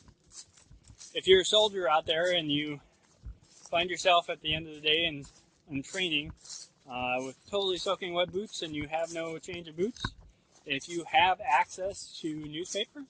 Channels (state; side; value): identical; both; correlation 1.00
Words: If you're a soldier out there and you find yourself at the end of the day in training with totally soaking wet boots and you have no change of boots, if you have access to newspaper,